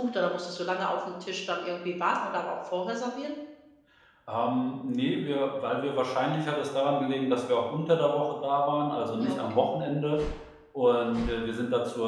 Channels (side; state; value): both; identical; correlation 1.00